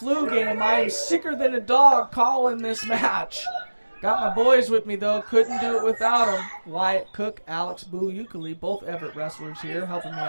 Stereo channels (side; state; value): both; inverted; correlation -1.00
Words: game. I am sicker than a dog calling this match. Got my boys with me, though. Couldn't do it without them. Wyatt Cook, Alex Boo Euclid, both Everett wrestlers here helping me